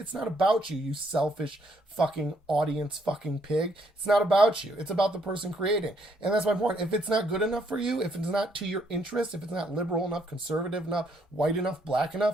not about you, you selfish fucking audience fucking pig. It's not about you. It's about the person creating. And that's my point. If it's not good enough for you, if it's not to your interest, if it's not liberal enough, conservative enough, white enough, black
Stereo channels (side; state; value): both; normal; correlation 0.71